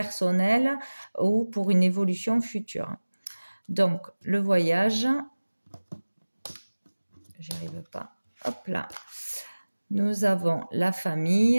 ou pour une évolution future. Donc le voyage, j'y arrive pas, hop là. Nous avons la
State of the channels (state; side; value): inverted; both; correlation -1.00